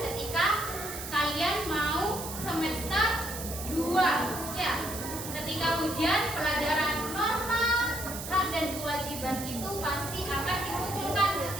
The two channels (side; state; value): right; noise; hiss, 8 dB below the sound